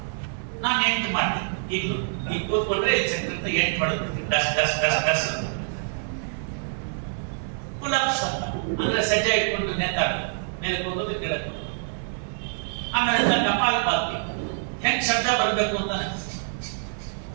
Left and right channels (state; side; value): silent; left; digital silence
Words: ನಾನು 8 ಮಾಡ್ತೀನಿ. ಈಗಲೂ ಈಗ ಕೂತ್ಕೊಂಡ್ರೆ ಚಕ್ರ 8 ಮಾಡೋದು. ಡಸ್ ಡಸ್ ಡಸ್ ಡಸ್ ಅಂತ. ಪುಲಪ್ಸ್ ಅಂತ ಅಂದ್ರೆ ಸಜ್ಜೆ ಇಟ್ಕೊಂಡು ನೇತಾಡೋದು, ಮೇಲೆ ಹೋಗೋದು ಕೆಳಗೆ ಹೋಗೋದು. ಆಮೇಲೆ ಕಪಾಲ್ ಪಾತಿ ಹೆಂಗ್ ಶಬ್ದ ಬರ್ಬೇಕು ಅಂತ